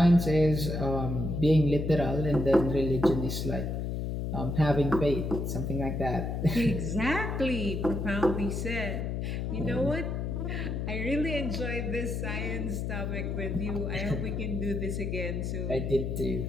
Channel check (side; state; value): left; noise; hum, 2 dB below the sound